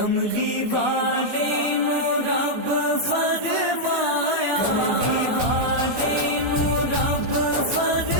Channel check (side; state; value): left; late; 14 ms